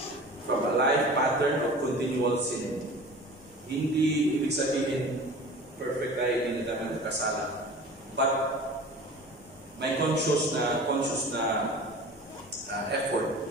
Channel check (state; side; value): normal; both; correlation 0.39